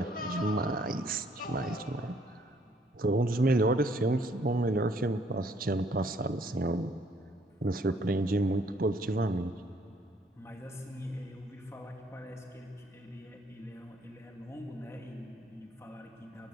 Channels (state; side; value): normal; both; correlation 0.64